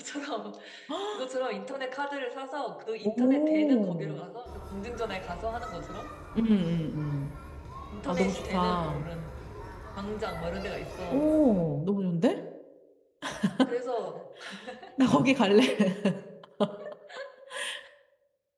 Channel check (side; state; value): both; identical; correlation 1.00